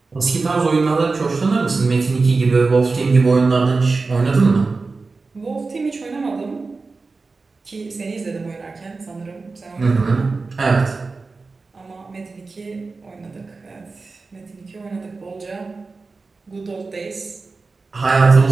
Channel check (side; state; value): left; quieter; 4.0 dB